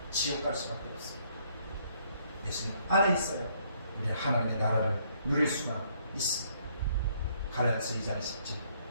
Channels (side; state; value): both; inverted; correlation -0.67